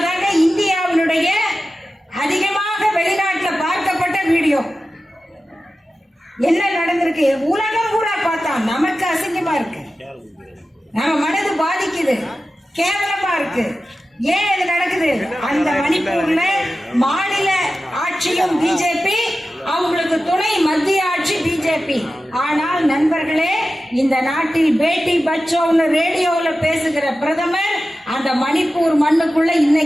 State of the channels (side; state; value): both; normal; correlation 0.94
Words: தாங்க இந்தியாவினுடைய அதிகமாக வெளிநாட்டில் பார்க்கப்பட்ட வீடியோ. என்ன நடந்திருக்கு? உலகம் கூட பார்த்தா நமக்கு அசிங்கமா இருக்கு, நம்ம மனது பாதிக்குது, கேவலமா இருக்கு. ஏன் இது நடக்குது? அந்த மணிப்பூர்ல மாநில ஆட்சியும் பிஜேபி, அவங்களுக்கு துணை மத்திய ஆட்சி பிஜேபி. ஆனால் நண்பர்களே, இந்த நாட்டில் பேட்டி பச்சாவ்னு ரேடியோல பேசுகிற பிரதமர் அந்த மணிப்பூர் மண்ணுக்குள்ள